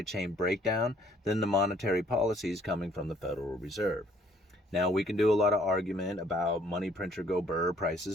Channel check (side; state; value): both; normal; correlation 0.62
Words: chain breakdown than the monetary policies coming from the Federal Reserve. Now, we can do a lot of argument about money printer go burr,